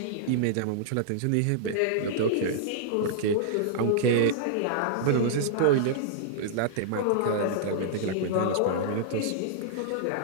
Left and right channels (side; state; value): both; different; correlation -0.01